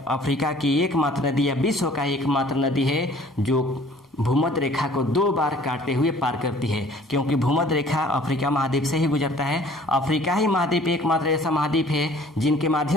अफ्रीका की एकमात्र नदी या विश्व का एकमात्र नदी है जो भूमध्य रेखा को 2 बार काटते हुए पार करती है, क्योंकि भूमध्य रेखा अफ्रीका महाद्वीप से ही गुजरता है। अफ्रीका ही महाद्वीप एकमात्र ऐसा महाद्वीप है जिनके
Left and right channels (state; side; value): normal; both; correlation 0.53